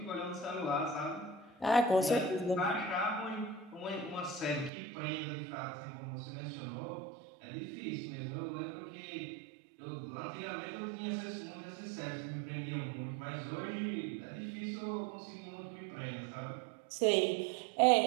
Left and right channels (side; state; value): left; drops out; at 4.7 s